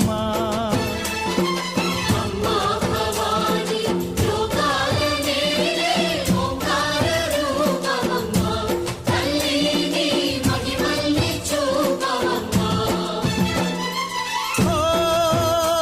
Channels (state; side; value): identical; both; correlation 1.00